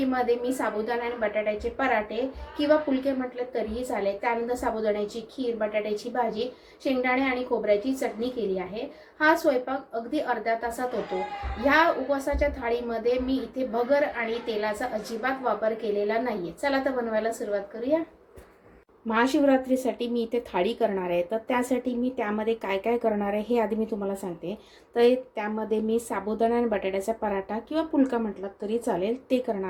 मी साबुदाणा आणि बटाट्याचे पराठे किंवा फुलके म्हटले तरीही चालेल, त्यानंतर साबुदाण्याची खीर, बटाट्याची भाजी, शेंगदाणे आणि खोबऱ्याची चटणी केली आहे। हा स्वयंपाक अगदी अर्ध्या तासात होतो। ह्या उपवासाच्या थाळीमध्ये मी इथे भगर आणि तेलाचा अजिबात वापर केलेला नाहीये। चला तर बनवायला सुरुवात करूया। महाशिवरात्रीसाठी मी इथे थाळी करणार आहे, तर त्यासाठी मी त्यामध्ये काय काय करणार आहे हे आधी मी तुम्हाला सांगते। तर त्यामध्ये मी साबुदाणा आणि बटाट्याचा पराठा किंवा फुलका म्हटलात तरी चालेल ते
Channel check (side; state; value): both; identical; correlation 1.00